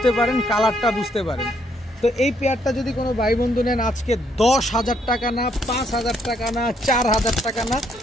পারেন, কালারটা বুঝতে পারেন। তো এই পেয়ারটা যদি কোনো ভাই বন্ধু নেন আজকে 10,000 টাকা না, 5,000 টাকা না, 4,000 টাকা না,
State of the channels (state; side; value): normal; both; correlation 0.71